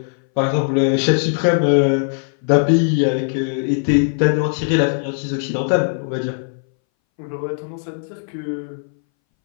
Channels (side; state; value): right; silent; 63 dB below the other